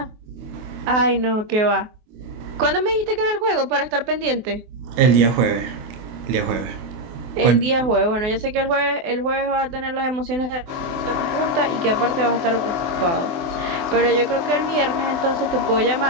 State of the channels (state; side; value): late; left; 24 ms